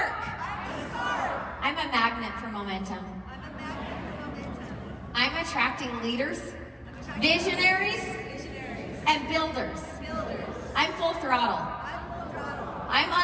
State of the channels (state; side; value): identical; both; correlation 1.00